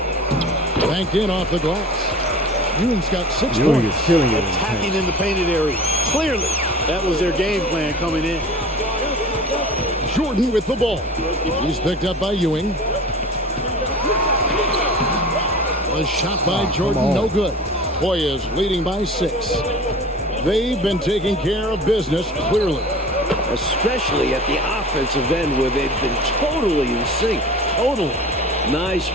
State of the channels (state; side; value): normal; both; correlation 0.39